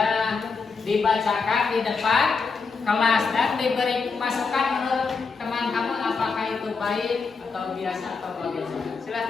Dibacakan di depan kelas dan diberi masukan menurut teman kamu apakah itu baik atau biasa atau bagaimana?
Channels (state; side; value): quieter; right; 4.8 dB